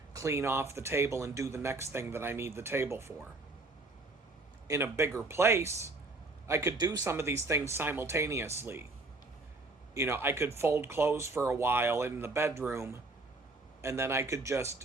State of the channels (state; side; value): quieter; left; 3.1 dB